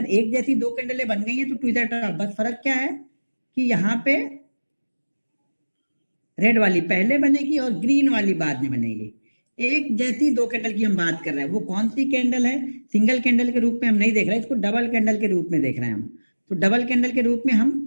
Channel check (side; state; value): both; inverted; correlation -1.00